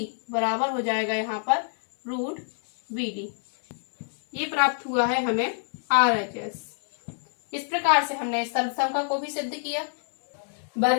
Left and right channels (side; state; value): right; silent; digital silence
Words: बराबर हो जाएगा यहाँ पर रूट बी डी। ये प्राप्त हुआ है हमें आरएचएस। इस प्रकार से हमने इस सर्वसंख्या को भी सिद्ध किया।